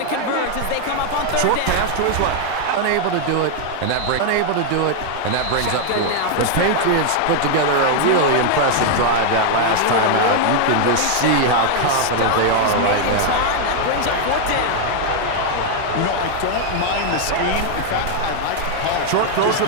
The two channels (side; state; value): both; different; correlation 0.00